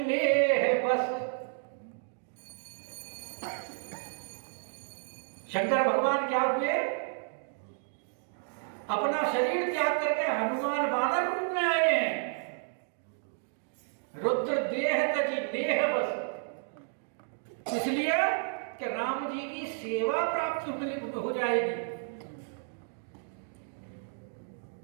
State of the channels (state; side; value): silent; left; digital silence